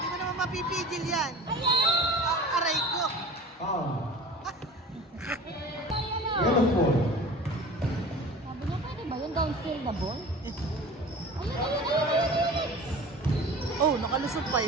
mo naman mapipigil yan. Aray ko. Foul. Yellow ball. Sabi niya, pwede ba yun? Downfield na ball? Ayun. Oh, nakalusot pa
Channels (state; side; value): normal; both; correlation 0.39